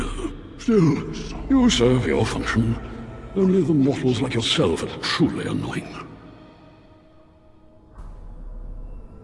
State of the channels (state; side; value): identical; both; correlation 1.00